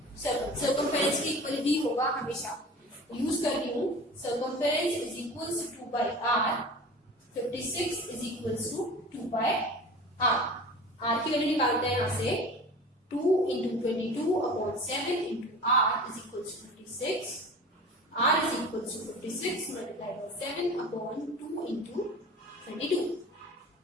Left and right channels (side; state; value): both; normal; correlation 0.37